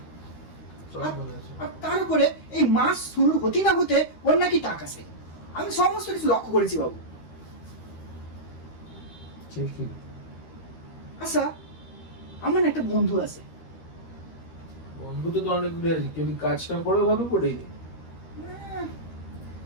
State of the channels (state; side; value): late; right; 13 ms